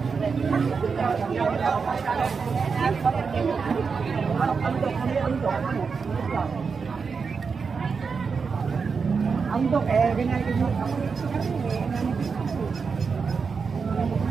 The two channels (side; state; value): left; quieter; 5.4 dB